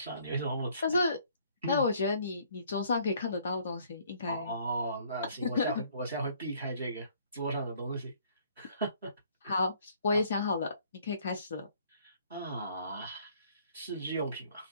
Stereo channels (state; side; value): inverted; both; correlation -0.61